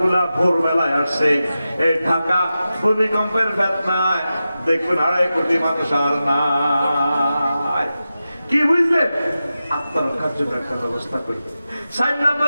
গুলা ভোরবেলায় আসছে। এই ঢাকা ভূমিকম্পের বেদনায় দেখবেন 2.5 কোটি মানুষ আর নাই। কি বুঝলেন? আত্মরক্ষার জন্য একটা ব্যবস্থা করি। 4 নম্বর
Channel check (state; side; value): inverted; both; correlation -0.93